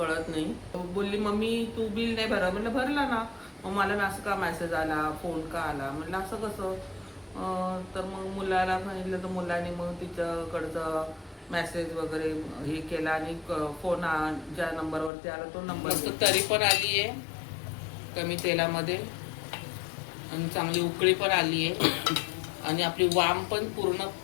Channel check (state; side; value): drops out; right; at 15.1 s